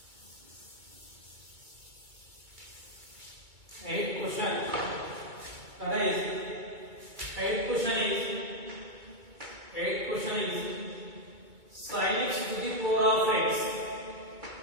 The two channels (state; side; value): late; left; 2.2 ms